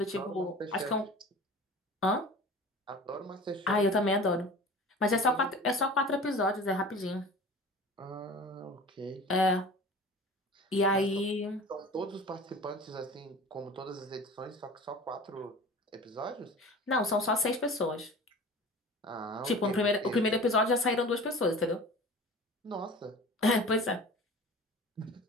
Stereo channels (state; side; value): normal; both; correlation 0.39